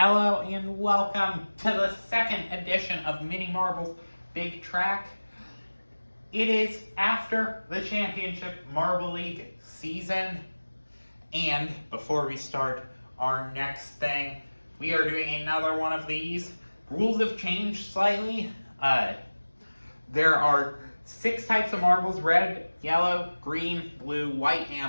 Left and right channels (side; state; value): both; inverted; correlation -1.00